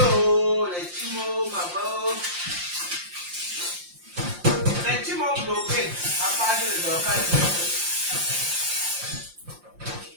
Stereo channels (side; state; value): left; late; 5.7 ms